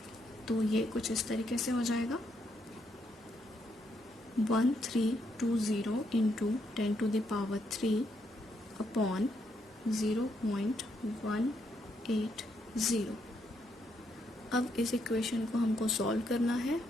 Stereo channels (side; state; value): both; normal; correlation 0.77